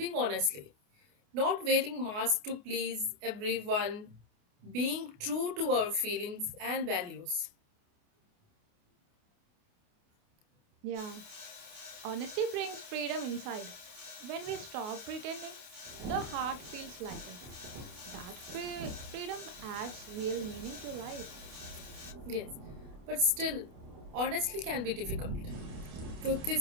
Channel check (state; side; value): late; left; 28 ms